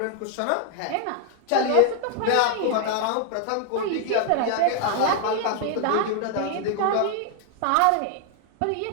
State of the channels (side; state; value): both; different; correlation 0.00